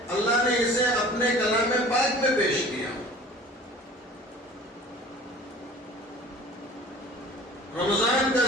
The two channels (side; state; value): both; normal; correlation 0.44